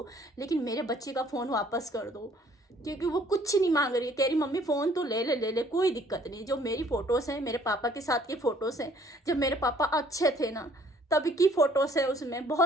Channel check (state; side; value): normal; both; correlation 0.59